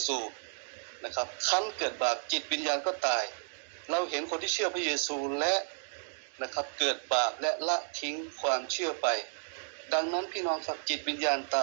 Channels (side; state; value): left; silent; digital silence